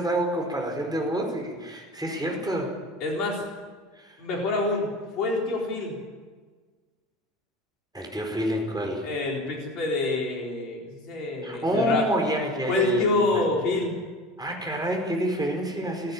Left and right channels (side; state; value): both; normal; correlation 0.37